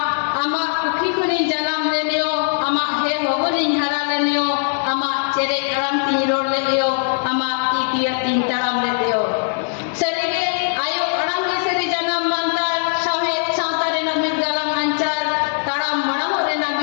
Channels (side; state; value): right; silent; digital silence